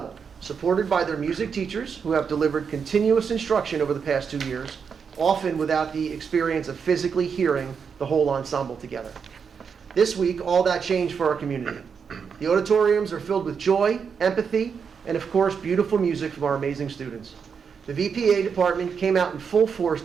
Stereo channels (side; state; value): left; quieter; 6.3 dB